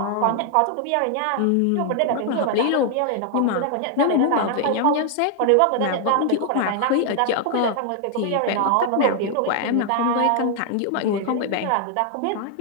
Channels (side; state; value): both; different; correlation 0.00